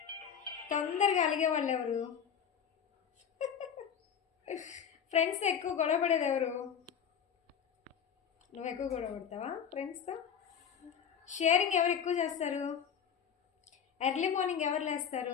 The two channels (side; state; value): right; quieter; 7.8 dB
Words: తొందరగా అలిగే వాళ్ళు ఎవరు? ఫ్రెండ్స్ ఎక్కువ గొడవ పడేది ఎవరు? నువ్వు ఎక్కువ గొడవ పడతావా ఫ్రెండ్స్తో? షేరింగ్ ఎవరు ఎక్కువ చేస్తారు? ఎర్లీ మార్నింగ్ ఎవరు